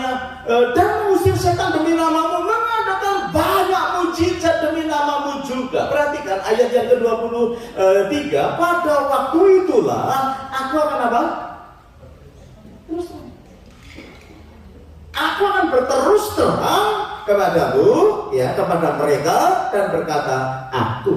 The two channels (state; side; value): identical; both; correlation 1.00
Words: dan mengusir setan demi namamu, mengadakan banyak mujizat demi namamu juga. Perhatikan ayat yang ke-23, pada waktu itulah aku akan apa? Terus aku akan berterus terang kepadamu, ya, kepada mereka, dan berkata,